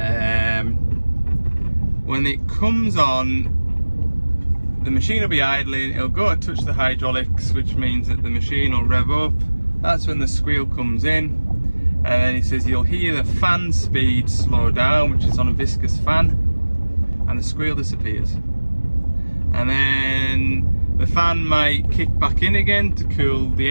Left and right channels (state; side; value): inverted; both; correlation -1.00